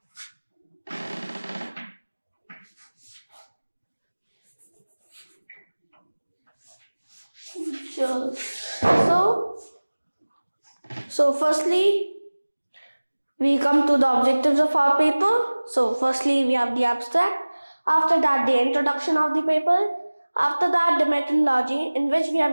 So firstly, we come to the objectives of our paper. So firstly, we have the abstract. After that, the introduction of the paper. After that, the methodology in which we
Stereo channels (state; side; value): inverted; both; correlation -1.00